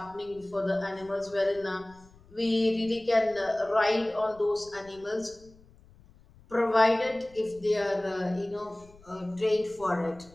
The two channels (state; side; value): noise; left; rumble, 26 dB below the sound